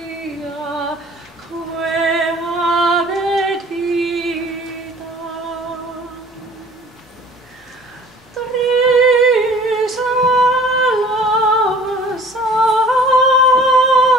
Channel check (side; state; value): both; normal; correlation 0.49